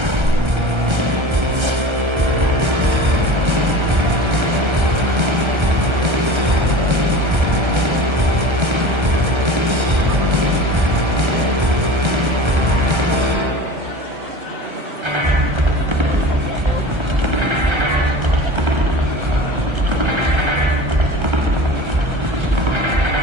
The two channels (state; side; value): late; left; 1.3 ms